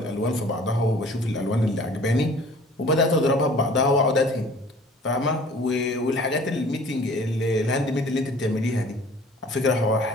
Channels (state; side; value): normal; both; correlation 0.50